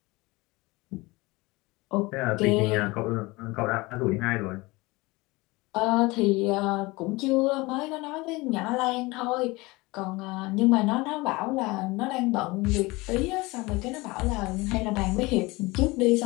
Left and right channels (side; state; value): right; quieter; 22.8 dB